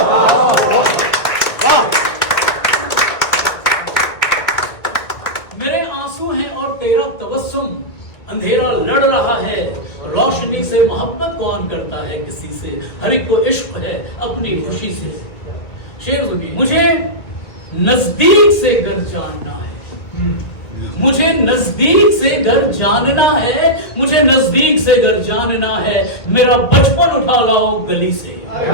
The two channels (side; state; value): right; late; 1.6 ms